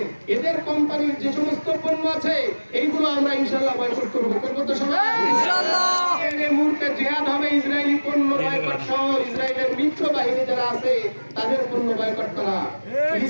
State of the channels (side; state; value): both; inverted; correlation -1.00